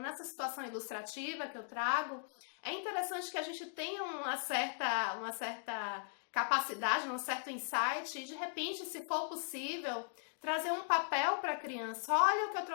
situação ilustrativa que eu trago, é interessante que a gente tenha uma certa capacidade, um certo insight, e de repente, se for possível, trazer um papel para a criança. Olha o que eu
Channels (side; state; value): right; silent; digital silence